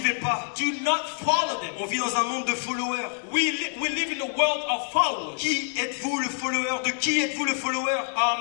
pas. do not follow them. On vit dans un monde de followers. We live in a world of followers. Qui êtes-vous le follower? De qui êtes-vous le follower?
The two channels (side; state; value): right; silent; 61 dB below the other